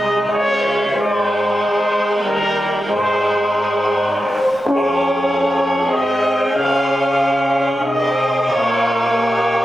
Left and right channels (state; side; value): normal; both; correlation 0.91